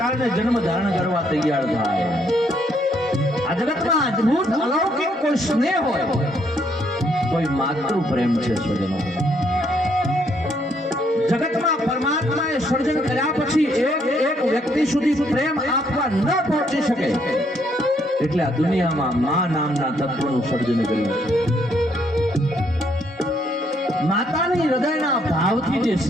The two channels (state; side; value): normal; both; correlation 0.70